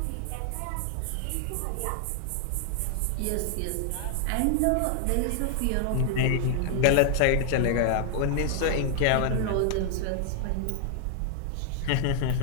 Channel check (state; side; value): different; both; correlation 0.00